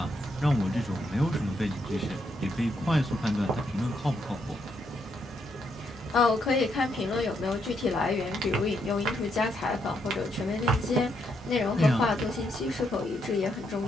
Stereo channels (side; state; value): both; normal; correlation 0.77